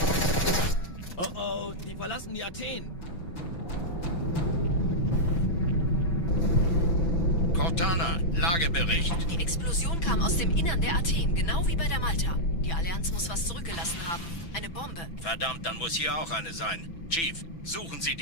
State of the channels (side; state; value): right; late; 5.9 ms